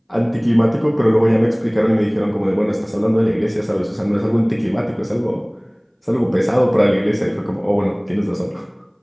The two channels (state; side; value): identical; both; correlation 1.00